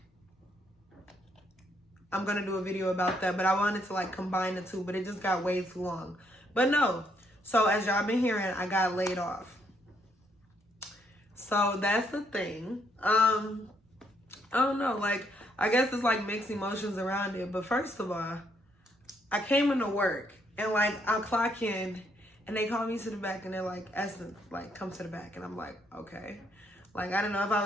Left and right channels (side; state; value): both; normal; correlation 0.72